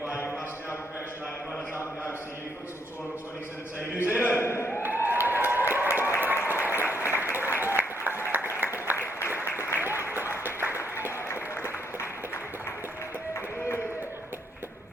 must now congratulate the runners up in the OCU Futsal Tournament 2017 New Zealand.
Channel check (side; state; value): both; normal; correlation 0.73